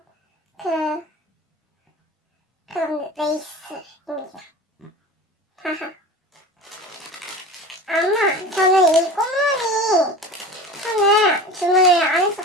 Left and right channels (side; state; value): both; normal; correlation 0.34